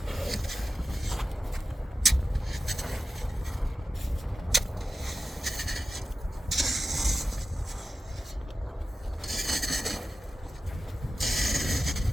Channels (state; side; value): normal; both; correlation 0.93